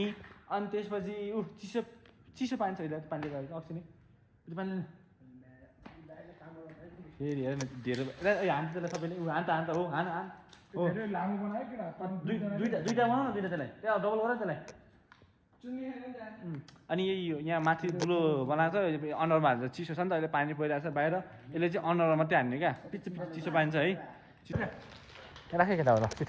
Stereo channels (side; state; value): both; identical; correlation 1.00